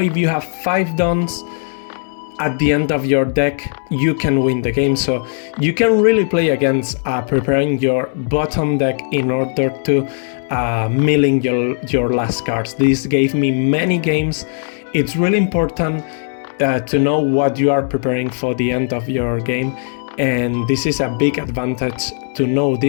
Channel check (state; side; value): silent; right; digital silence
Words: you have 5 dons at the end of your deck, you can win the game. So you can really play against preparing your bottom deck in order to milling your last cards. This gave me many games. It's really important to know what you are preparing for the end of your game, and this is a big advantage to know